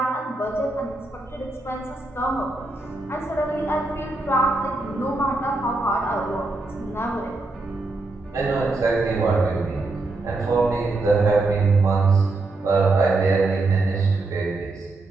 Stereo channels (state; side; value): quieter; left; 3.2 dB